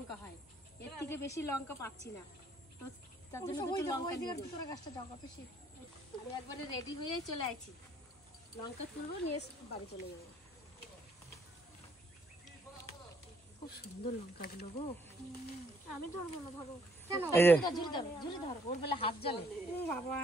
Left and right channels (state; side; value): normal; both; correlation 0.66